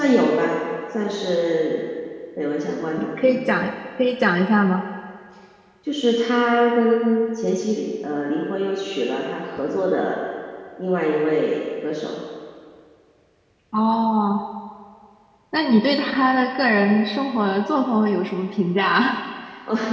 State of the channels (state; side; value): identical; both; correlation 1.00